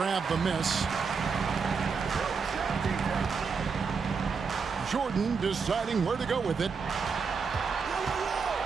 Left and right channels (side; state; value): left; quieter; 5.4 dB